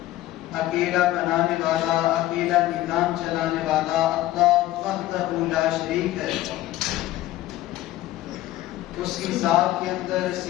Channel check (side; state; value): right; quieter; 15.3 dB